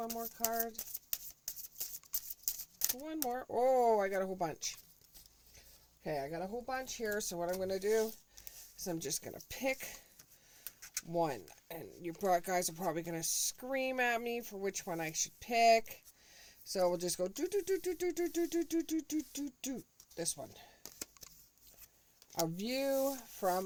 more card. One more. Oh, I got a whole bunch. Okay, I got a whole bunch here. So what I'm going to do is I'm just going to pick one. And you guys are probably going to scream at me for which one I should pick. So we'll just go do. This one. A view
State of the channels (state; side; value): identical; both; correlation 1.00